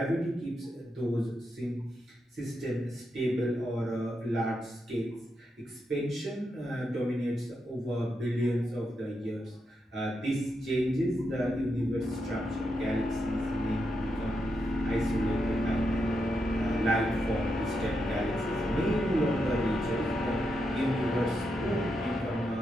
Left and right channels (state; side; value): normal; both; correlation 0.84